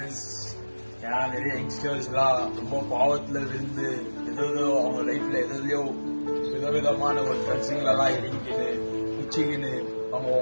ஏன்னா நிறைய யங்ஸ்டர்ஸ்லாம் ரொம்ப பாவத்துல இருந்து ஏதோ அவங்க லைஃப்ல எதையோ விதவிதமான ஒரு ஃப்ரெண்ட்ஸுங்களெல்லாம் இறங்கிக்கின்னு குச்சிக்கின்னு அவங்க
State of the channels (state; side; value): inverted; both; correlation -1.00